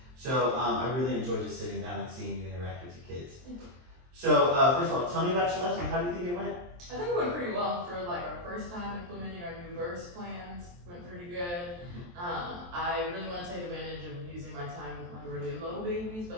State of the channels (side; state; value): left; late; 23 ms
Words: So I really enjoyed just sitting down and seeing you interact with your kids. So first of all, tell me about your lesson. How do you think it went? I think it went pretty well for like our first time implementing our new verse plans. Went pretty good. I really want to take advantage of using my time with my really low babies,